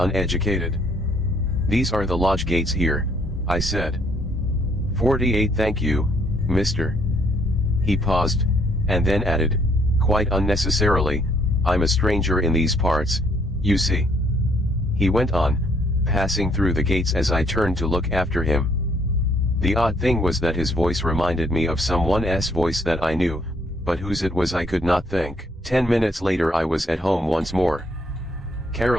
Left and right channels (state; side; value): normal; both; correlation 0.67